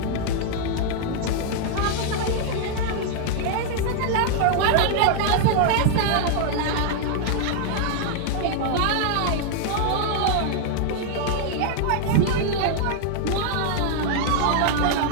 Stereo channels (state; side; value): different; both; correlation -0.01